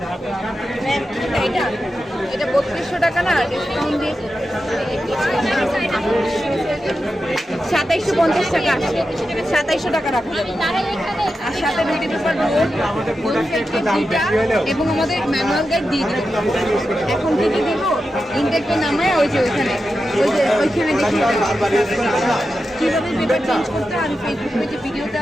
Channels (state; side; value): normal; both; correlation 0.90